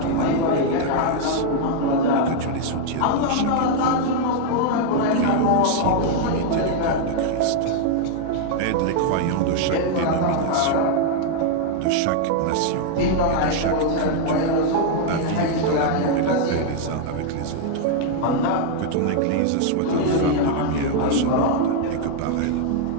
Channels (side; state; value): both; different; correlation 0.00